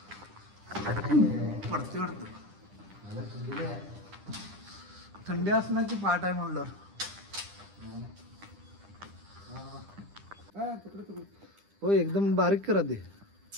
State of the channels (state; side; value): late; left; 10 ms